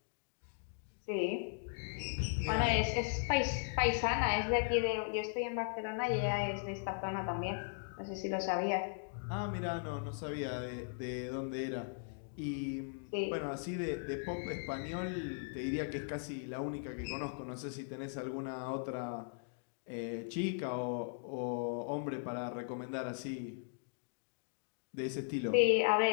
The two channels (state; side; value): silent; right; digital silence